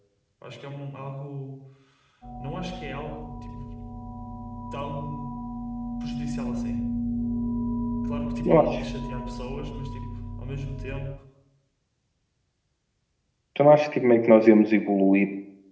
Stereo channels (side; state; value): both; identical; correlation 1.00